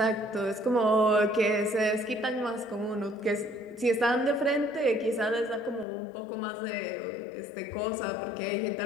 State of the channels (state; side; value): drops out; right; at 5.9 s